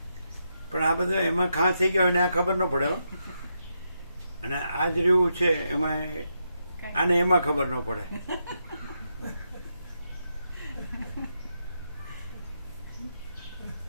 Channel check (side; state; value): both; inverted; correlation -0.83